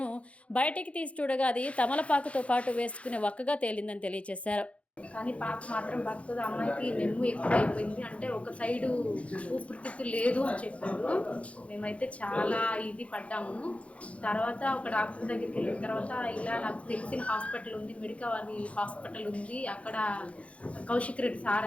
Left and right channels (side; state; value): right; late; 0.063 ms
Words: బయటికి తీసి చూడగా అది తమలపాకుతో పాటు వేసుకునే వక్కగా తేలిందని తెలియజేశారు. కానీ పాప మాత్రం బతుకుతుంది. అమ్మాయికి నెమ్ము ఎక్కువైపోయింది, అంటే ఒక సైడు ఊపిరితిత్తు లేదు అని చెప్పారు. మేమైతే చాలా ఇది పడ్డాము. తర్వాత ఒక డాక్టర్ దగ్గరికి వెళ్ళిన తర్వాత ఇలా నాకు తెలిసిన హాస్పిటల్ ఉంది, మెడికవర్ హాస్పిటల్ ఉంది, అక్కడ కౌశిక్ రెడ్డి